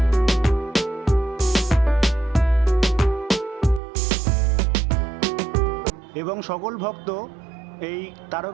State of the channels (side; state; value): left; drops out; at 3.8 s